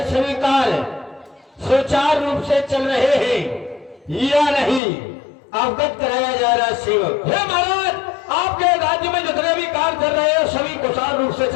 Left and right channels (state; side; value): drops out; right; at 4.8 s